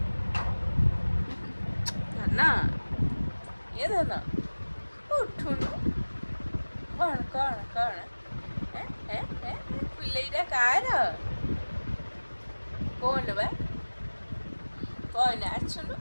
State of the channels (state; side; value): inverted; both; correlation -1.00